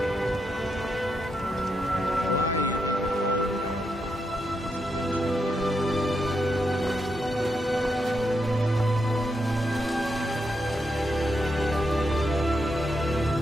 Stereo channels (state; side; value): normal; both; correlation 0.82